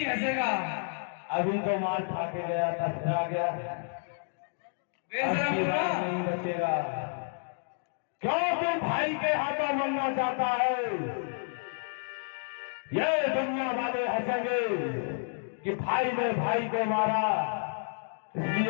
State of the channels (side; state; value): right; silent; digital silence